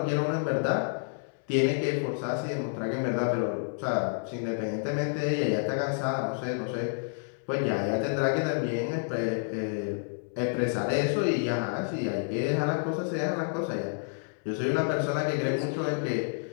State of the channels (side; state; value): right; silent; digital silence